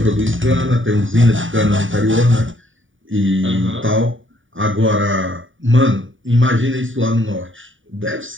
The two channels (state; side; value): late; left; 0.57 ms